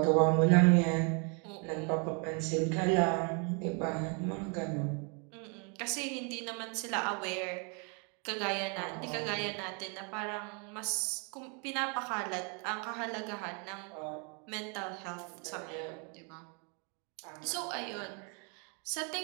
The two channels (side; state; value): left; quieter; 35.9 dB